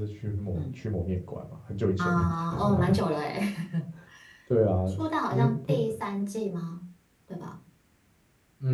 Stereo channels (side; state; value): both; identical; correlation 1.00